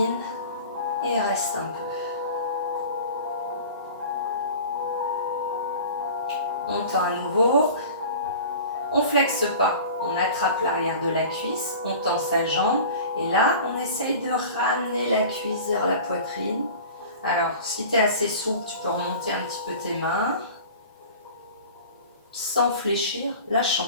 et reste un peu. On tend à nouveau. On flexe pas. On attrape l'arrière de la cuisse, on tend sa jambe et là, on essaye de ramener la cuisse vers la poitrine. Alors, si tu es assez souple, tu peux remonter un petit peu tes mains sans fléchir. Là, je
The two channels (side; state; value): both; inverted; correlation -0.40